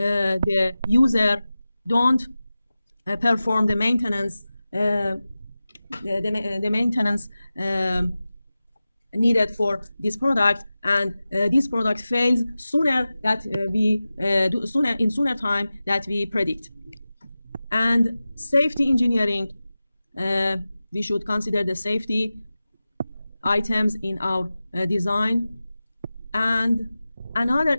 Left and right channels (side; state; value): both; inverted; correlation -0.95